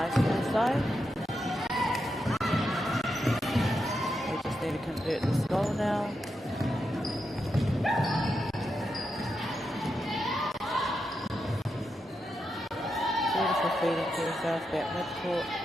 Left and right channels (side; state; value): both; normal; correlation 0.85